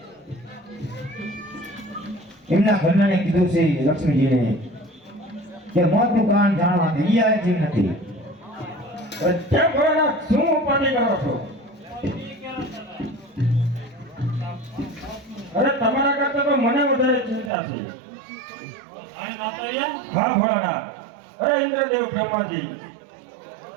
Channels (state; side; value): drops out; left; at 17.5 s